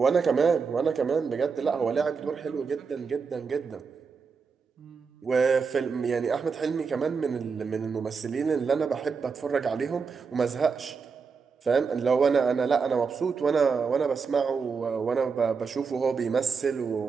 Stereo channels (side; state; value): left; quieter; 5.4 dB